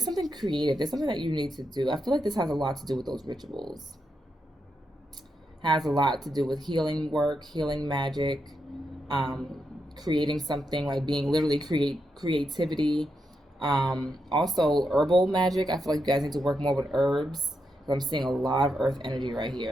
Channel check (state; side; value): normal; both; correlation 0.84